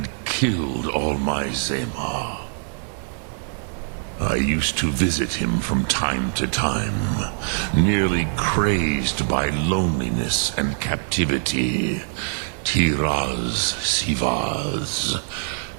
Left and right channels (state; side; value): silent; left; 58 dB below the other